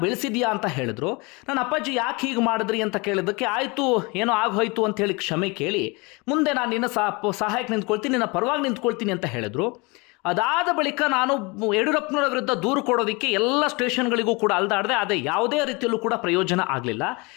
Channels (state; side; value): quieter; right; 27.3 dB